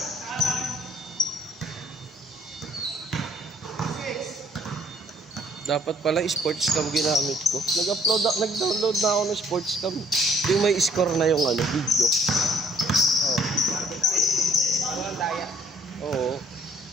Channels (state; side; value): normal; both; correlation 0.60